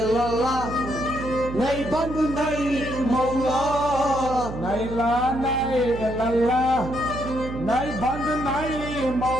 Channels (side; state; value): right; noise; hum, 9 dB below the sound